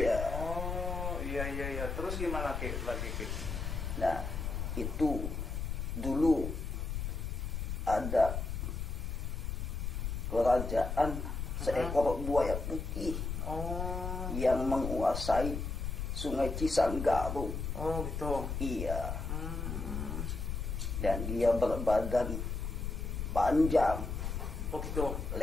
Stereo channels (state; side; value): noise; left; rumble, 3 dB below the sound